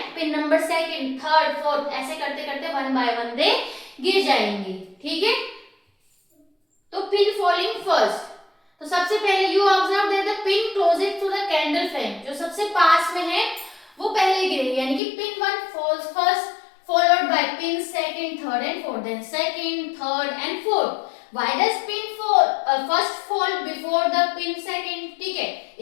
pin number 2, 3, 4, ऐसे करते करते 1 बाय 1 दे गिर जाएंगी, ठीक है। तो पिन फॉलिंग फर्स्ट, तो सबसे पहले you observe that the pin closest to the candle flame, जो सबसे पास में है वो पहले गिरेगी, यानी कि pin 1 falls first followed by pin 2nd, 3rd and 4th, then 2nd, 3rd and 4th. Why does pin first fall before the pin 2nd? ठीक है,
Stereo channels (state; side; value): drops out; right; at 15.0 s